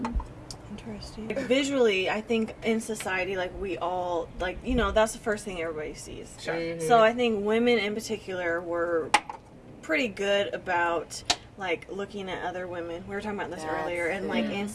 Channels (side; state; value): both; identical; correlation 1.00